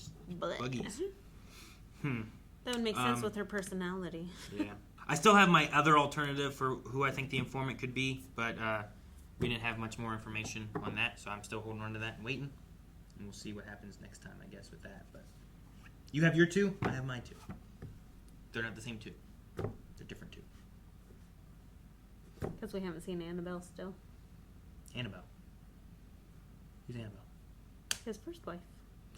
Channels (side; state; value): both; identical; correlation 1.00